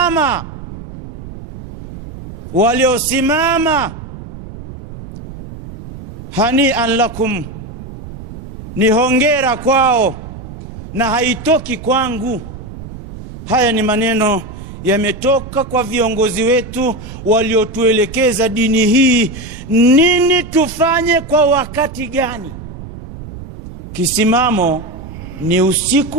hani'an lakum, ni hongera kwao na haitoki kwangu. Haya ni maneno yametoka kwa viongozi wetu waliotuelekeza dini hii, nini tufanye kwa wakati gani. Kisimamo ni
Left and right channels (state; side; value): noise; right; rumble, 13 dB below the sound